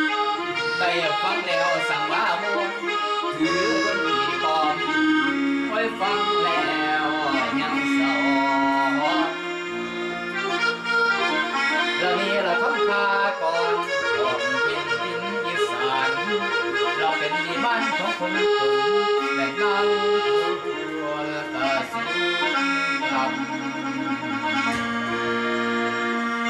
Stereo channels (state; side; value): identical; both; correlation 1.00